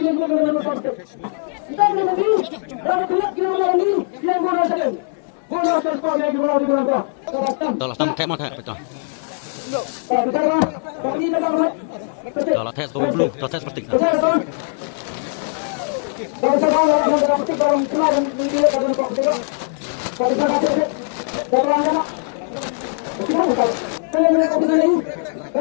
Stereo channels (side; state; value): right; silent; digital silence